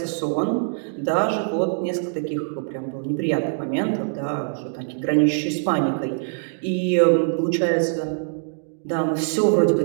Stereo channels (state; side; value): silent; left; digital silence